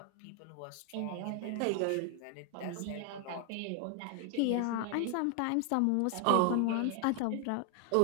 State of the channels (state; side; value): different; both; correlation 0.00